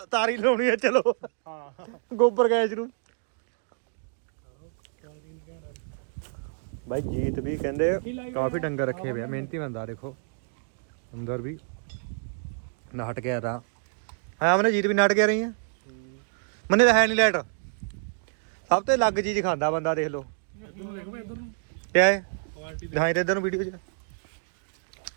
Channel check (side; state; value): left; silent; digital silence